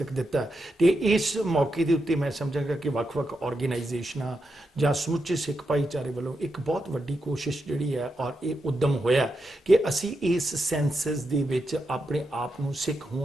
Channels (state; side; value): normal; both; correlation 0.85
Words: ਦਿੱਤਾ, ਤੇ ਇਸ ਮੌਕੇ ਦੇ ਉੱਤੇ ਮੈਂ ਸਮਝਾਂਗਾ ਕਿ ਵੱਖ-ਵੱਖ ਆਰਗੇਨਾਈਜੇਸ਼ਨਾਂ ਜਾਂ ਸਮੁੱਚੇ ਸਿੱਖ ਭਾਈਚਾਰੇ ਵੱਲੋਂ ਇੱਕ ਬਹੁਤ ਵੱਡੀ ਕੋਸ਼ਿਸ਼ ਜਿਹੜੀ ਹੈ ਔਰ ਇਹ ਉਦਮ ਹੋਇਆ ਕਿ ਅਸੀਂ ਇਸ ਸੈਂਸਸ ਦੇ ਵਿੱਚ ਆਪਣੇ ਆਪ ਨੂੰ ਸਿੱਖ